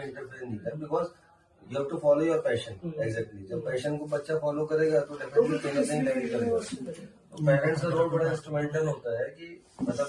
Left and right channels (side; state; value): both; identical; correlation 1.00